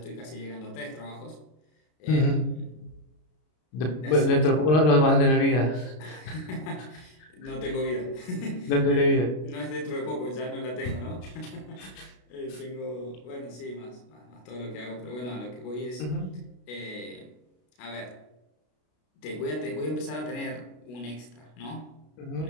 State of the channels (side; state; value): right; late; 33 ms